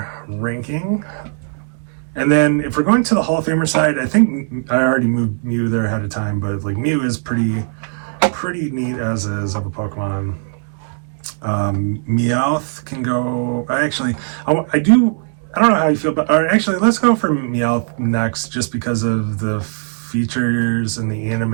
ranking. And then if we're going to the Hall of Famer side, I think I already moved Mew there ahead of time, but like Mew is pretty neat as is of a Pokemon. Meowth can go. I don't know how you feel, but actually, let's go for Meowth next, just because of the features in the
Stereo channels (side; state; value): left; silent; 67 dB below the other